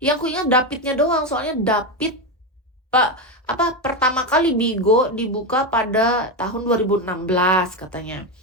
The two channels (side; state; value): both; normal; correlation 0.12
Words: aku ingat Davidnya doang, soalnya David Pak pertama kali Bigo dibuka pada tahun 2016 katanya.